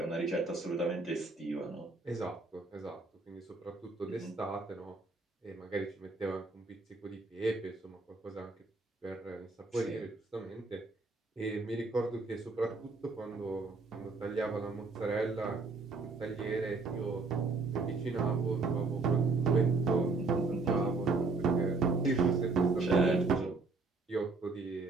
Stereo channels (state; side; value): quieter; left; 3.8 dB